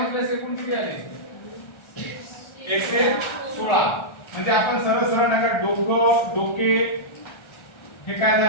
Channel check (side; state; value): right; late; 1.3 ms